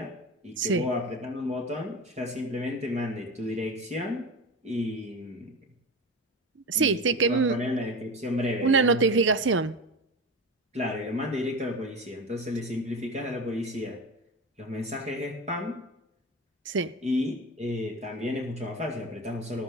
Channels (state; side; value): normal; both; correlation 0.27